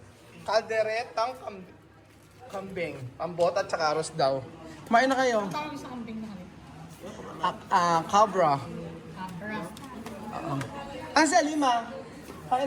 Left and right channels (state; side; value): identical; both; correlation 1.00